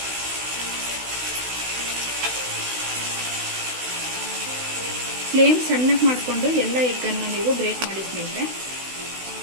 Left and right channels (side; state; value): left; late; 16 ms